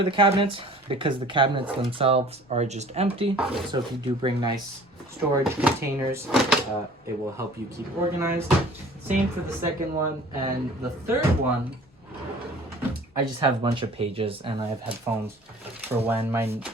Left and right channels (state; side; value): normal; both; correlation 0.48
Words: the cabinets because the cabinets themselves are just empty. So if you do bring nice storage containers, it will help you keep organized. Same for the second one. And the third one, I just have a bunch of pages and I have headphones for when my